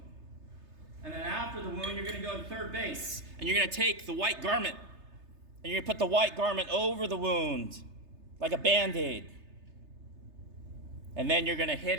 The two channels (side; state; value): left; late; 3.3 ms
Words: And then after the wound, you're going to go to third base. And you're going to take the white garment. And you're going to put the white garment over the wound like a Band-Aid. And then you're going to hit